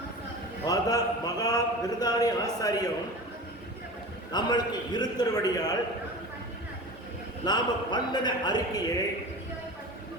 மகா விருதானி ஆசாரியம் நம்மளுக்கு இருக்கிறபடியால் நாம பண்ணின அறிக்கையை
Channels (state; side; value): normal; both; correlation 0.33